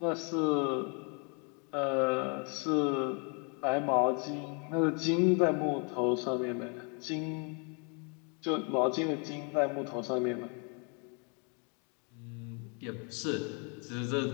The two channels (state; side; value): quieter; right; 36.6 dB